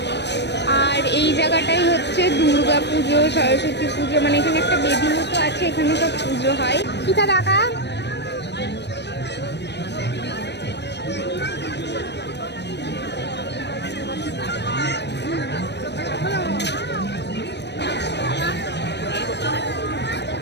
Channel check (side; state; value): right; late; 0.50 ms